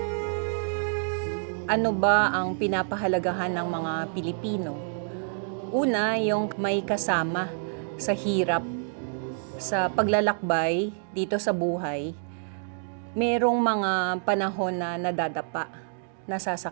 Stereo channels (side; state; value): left; silent; digital silence